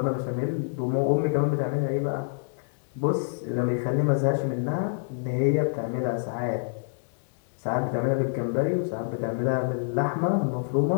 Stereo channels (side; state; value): right; silent; 60 dB below the other